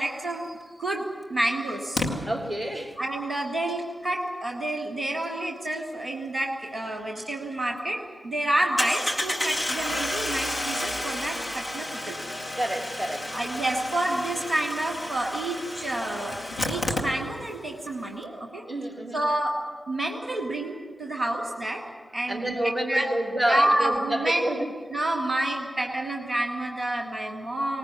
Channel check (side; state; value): both; normal; correlation 0.91